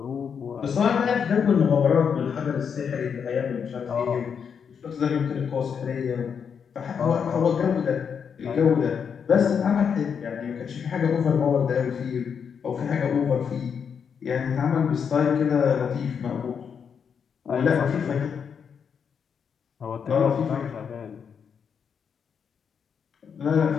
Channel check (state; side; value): quieter; right; 6.9 dB